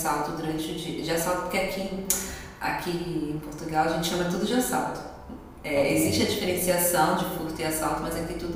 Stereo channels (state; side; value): identical; both; correlation 1.00